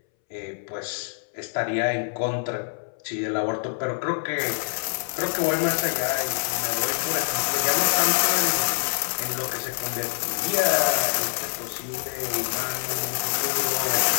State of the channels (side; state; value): right; silent; 61 dB below the other